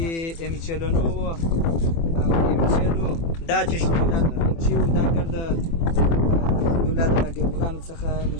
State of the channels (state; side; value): late; right; 24 ms